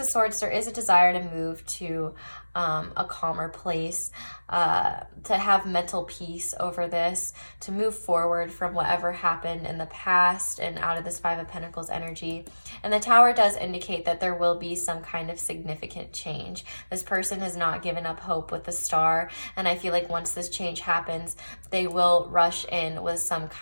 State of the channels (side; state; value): both; inverted; correlation -1.00